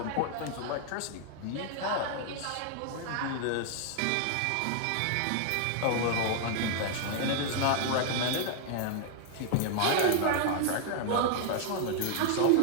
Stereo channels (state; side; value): different; both; correlation 0.00